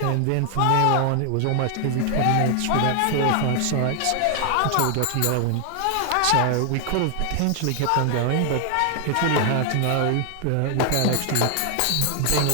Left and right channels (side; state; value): both; different; correlation 0.00